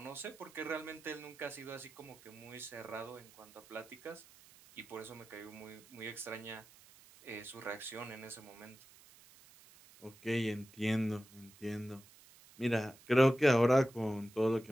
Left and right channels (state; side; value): noise; right; hiss, 23 dB below the sound